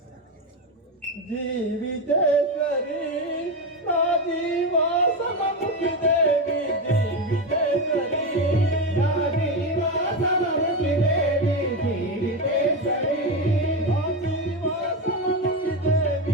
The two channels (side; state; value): both; normal; correlation 0.14